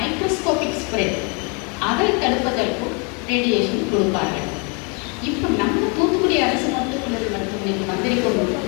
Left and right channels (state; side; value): quieter; right; 33.8 dB